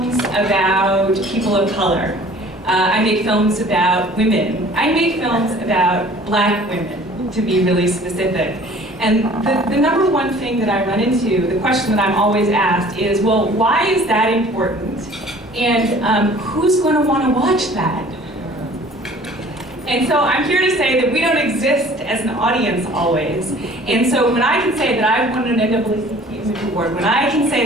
about people of color. I make films about women. I make films about Black women, to be really specific. And the number one thing that I run into, the question that I'm always asked is, well, why is that important? And who's going to want to watch that? And so I'm here to say that we don't exist as an audience always. And so when I can say that I've won an NAACP Image Award, when I can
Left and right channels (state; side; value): normal; both; correlation 0.50